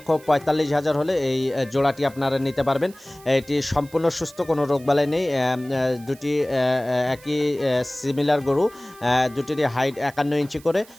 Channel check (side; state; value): right; noise; hiss, 23 dB below the sound